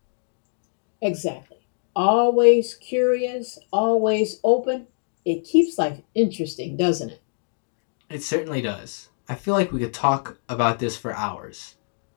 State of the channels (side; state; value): right; silent; digital silence